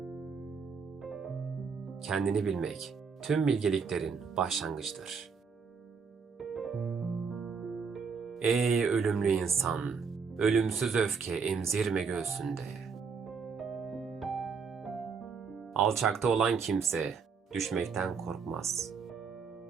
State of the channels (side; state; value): left; quieter; 5.6 dB